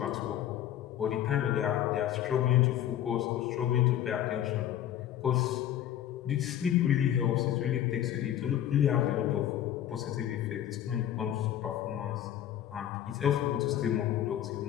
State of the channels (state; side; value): quieter; right; 11.3 dB